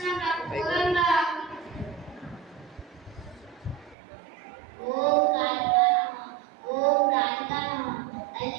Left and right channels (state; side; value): drops out; left; at 4.0 s